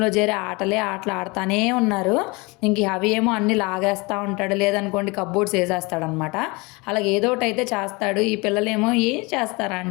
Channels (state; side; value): quieter; right; 26.3 dB